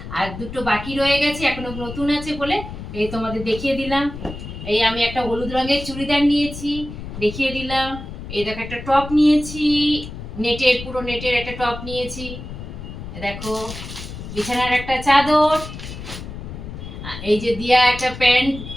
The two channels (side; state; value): left; noise; rumble, 10 dB below the sound